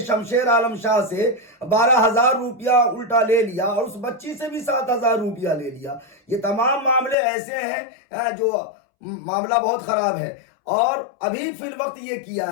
शमशेर आलम शाह से 12,000 रुपया उल्टा ले लिया और उस बच्ची से भी 7,000 रुपया ले लिया। ये तमाम मामले ऐसे हैं जो मामला बहुत खराब है। और अभी फिल वक्त ये किया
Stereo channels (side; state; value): right; drops out; at 7.2 s